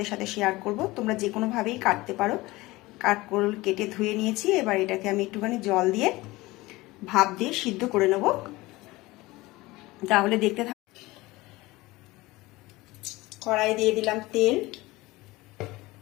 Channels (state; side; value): quieter; right; 20.3 dB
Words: সাথে শেয়ার করব। তোমরা যে কোনোভাবেই কাটতে পারো। কাঁকরোল কেটে ধুয়ে নিয়েছি। এবার এটাকে আমি একটুখানি জল দিয়ে ভাপ দিয়ে সিদ্ধ করে নেব, তাহলে দেখতে থাক। কড়াই দিয়ে দিলাম তেল,